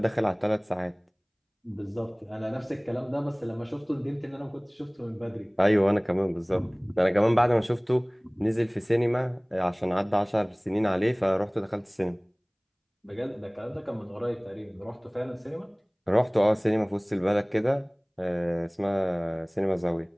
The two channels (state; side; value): identical; both; correlation 1.00